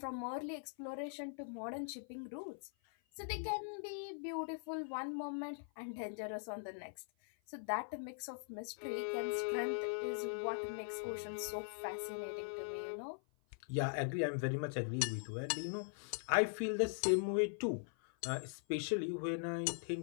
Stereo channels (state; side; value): silent; right; 50 dB below the other